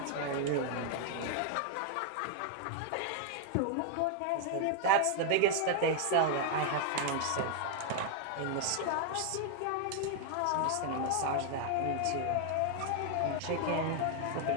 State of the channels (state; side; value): different; both; correlation 0.00